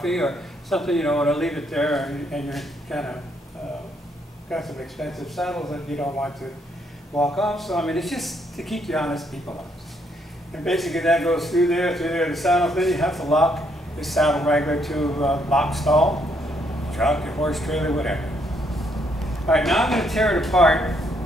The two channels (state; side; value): normal; both; correlation 0.72